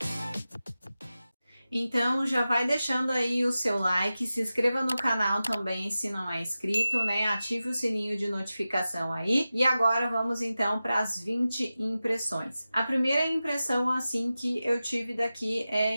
Então já vai deixando aí o seu like, se inscreva no canal também se não é inscrito, né? Ative o sininho de notificação aí. E agora vamos então para as 20 impressões. A primeira impressão assim que eu tive daqui é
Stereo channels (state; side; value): inverted; both; correlation -0.94